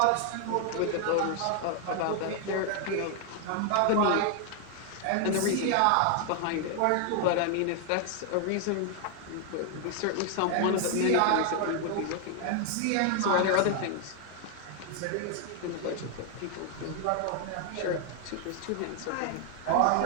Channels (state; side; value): different; both; correlation 0.00